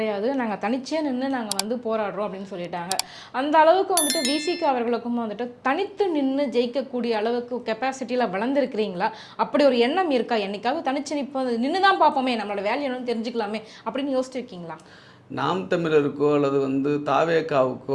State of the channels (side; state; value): both; identical; correlation 1.00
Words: நாங்கள் தனிச்சே நின்று நாங்கள் வந்து போராடுறோம் அப்படின்னு சொல்லிட்டாங்க. அந்த அளவுக்கு வந்துட்டு விசிக அவர்களுக்கும் வந்துட்டு தனித்து நின்று ஜெயிக்கக்கூடிய அளவுக்கு கெப்பாசிட்டியில் வளர்ந்துருக்கிறீங்களா? அப்படி ஒரு எண்ணம் இருக்கா? என்னைக்காவது தனிச்சு நிற்போம், நின்று தான் பார்ப்போமே, நம்மளோட வேல்யூ என்னன்னு தெரிஞ்சுக்கலாமே அப்படின்னு யோசிச்சிருக்கீங்களா? நாம் தமிழருக்கோ அல்லது